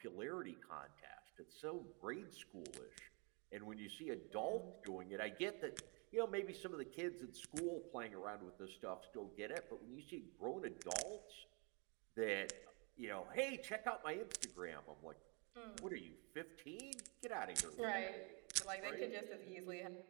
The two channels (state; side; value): quieter; left; 33.5 dB